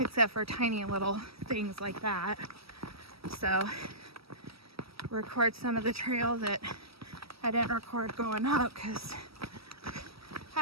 for tiny little things like that. So, record some of the trail that I didn't record going up because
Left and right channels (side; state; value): left; late; 0.76 ms